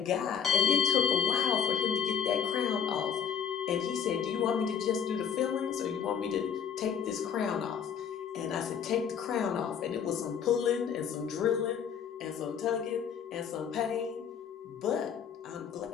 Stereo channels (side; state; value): right; quieter; 7.7 dB